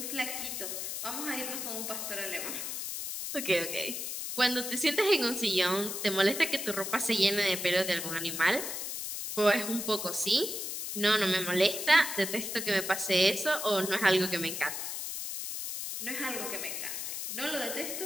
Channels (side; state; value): left; noise; hiss, 4 dB below the sound